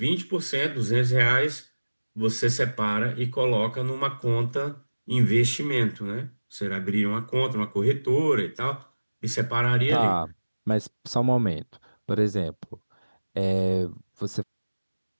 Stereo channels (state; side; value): inverted; both; correlation -1.00